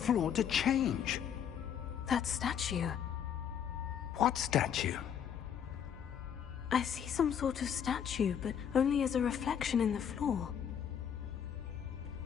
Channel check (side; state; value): right; quieter; 8.5 dB